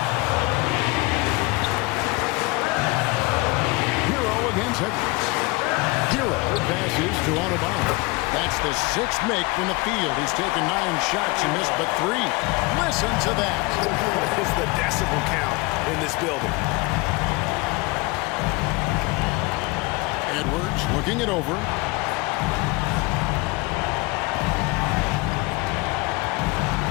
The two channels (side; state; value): right; quieter; 24.6 dB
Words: Hero against Edwards. Hero passes to Autobahn. That's the 6th make from the field. He's taken 9 shots and missed but 3. Listen to that. What is the decibel count in this building? Edwards looking it over.